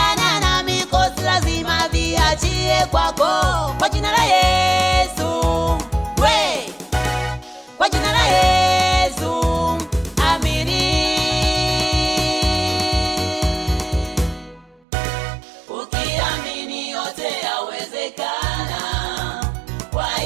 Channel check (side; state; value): left; drops out; at 14.9 s